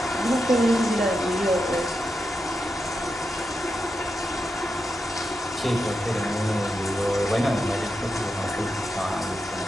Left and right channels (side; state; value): both; normal; correlation 0.87